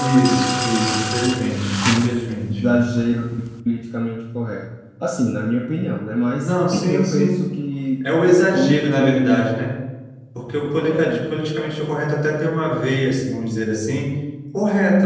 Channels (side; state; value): both; identical; correlation 1.00